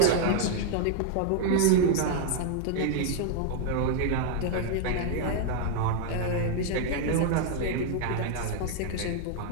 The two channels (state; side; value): different; both; correlation 0.00